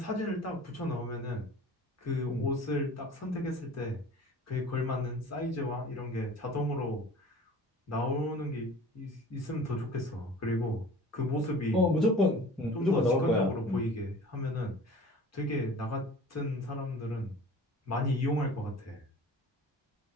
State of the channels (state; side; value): normal; both; correlation 0.43